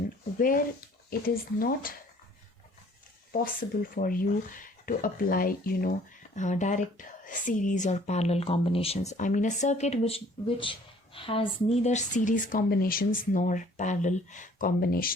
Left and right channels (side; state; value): both; normal; correlation 0.56